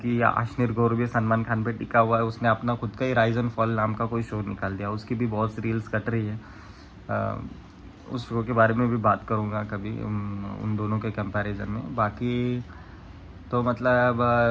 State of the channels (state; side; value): identical; both; correlation 1.00